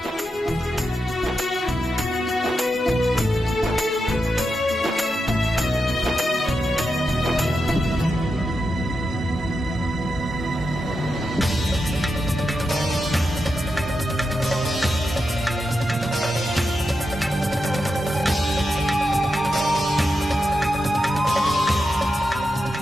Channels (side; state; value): both; normal; correlation 0.87